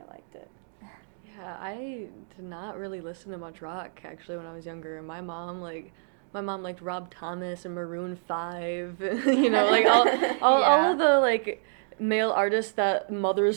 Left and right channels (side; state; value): left; silent; digital silence